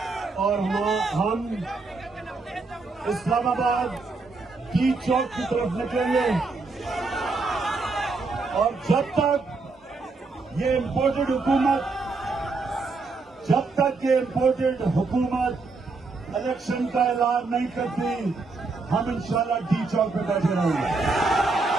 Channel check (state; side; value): quieter; left; 3.9 dB